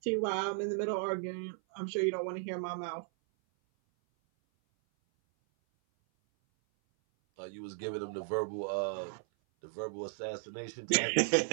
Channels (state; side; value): silent; left; 54 dB below the other